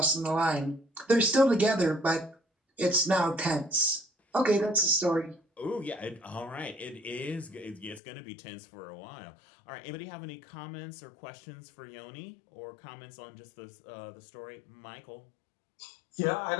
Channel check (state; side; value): drops out; right; at 8.0 s